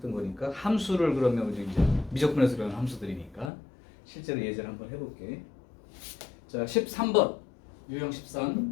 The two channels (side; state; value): right; drops out; at 3.5 s